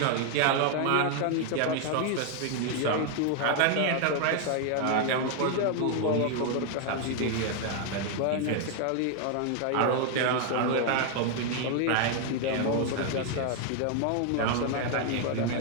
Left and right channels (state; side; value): different; both; correlation 0.00